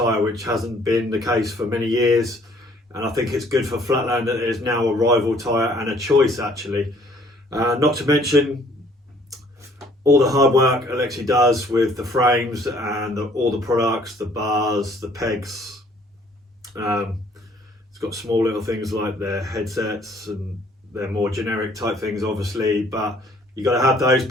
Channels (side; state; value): both; normal; correlation 0.59